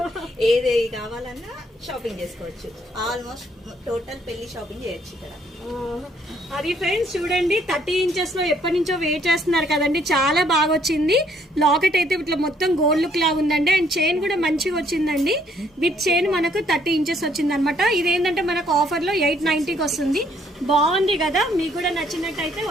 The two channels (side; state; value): both; normal; correlation 0.66